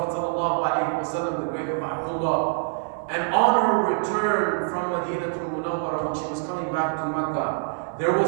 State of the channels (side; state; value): left; silent; 62 dB below the other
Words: ﷺ, the grave of Abdullah. And on her return from Madinah al-Munawwarah, when she was coming back to Makkah, there